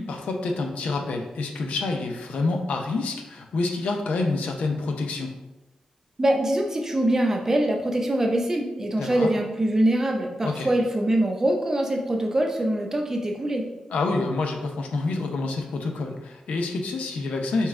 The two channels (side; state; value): both; normal; correlation 0.88